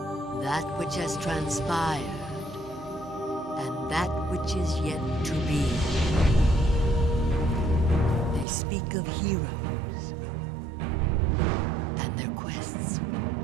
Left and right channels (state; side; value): drops out; left; at 8.5 s